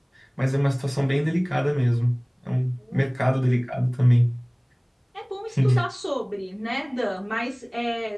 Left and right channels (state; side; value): identical; both; correlation 1.00